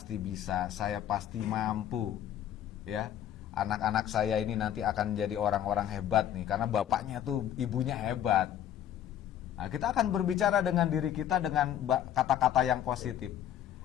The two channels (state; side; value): quieter; right; 10.7 dB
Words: bisa, saya pasti mampu. Ya, anak-anak saya ini nanti akan jadi orang-orang hebat nih, karena bapaknya tuh, ibunya hebat. Nah, kita akan berbicara dengan diri kita dengan kata-kata yang positif.